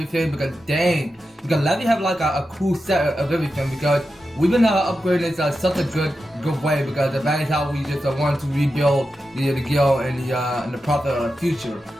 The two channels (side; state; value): both; normal; correlation 0.90